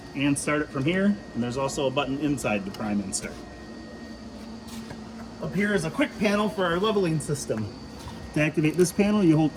and start it from here. And there's also a button inside to prime and start. Up here is a quick panel for our leveling system. To activate this panel, you hold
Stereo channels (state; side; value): identical; both; correlation 1.00